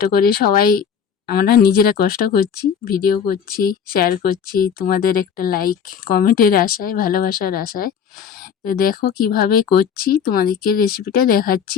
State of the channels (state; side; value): quieter; right; 7.5 dB